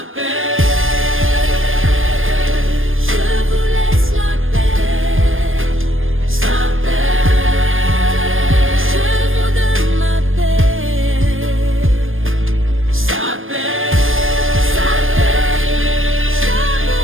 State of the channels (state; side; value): late; left; 0.59 ms